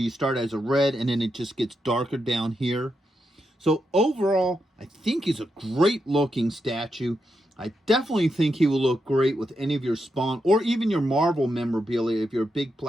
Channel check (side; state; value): both; normal; correlation 0.84